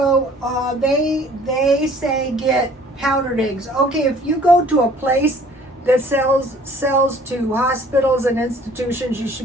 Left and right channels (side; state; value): both; normal; correlation 0.54